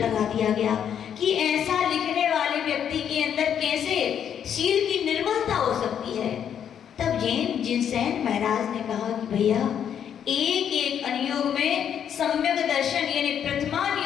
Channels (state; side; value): quieter; right; 8.8 dB